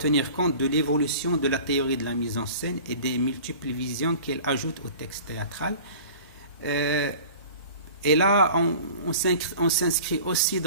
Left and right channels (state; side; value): inverted; both; correlation -0.43